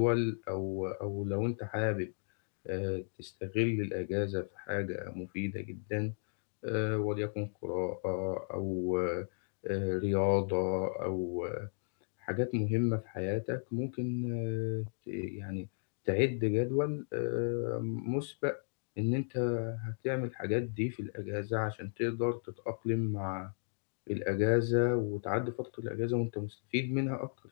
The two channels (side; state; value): right; silent; digital silence